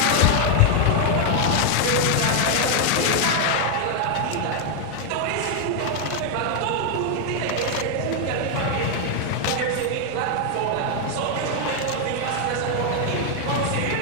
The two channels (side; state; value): both; different; correlation 0.00